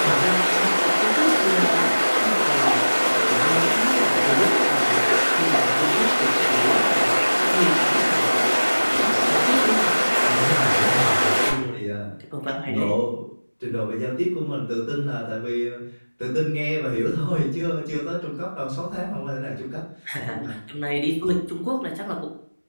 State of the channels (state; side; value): inverted; both; correlation -1.00